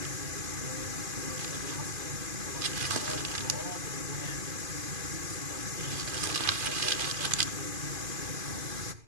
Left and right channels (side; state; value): left; late; 2.5 ms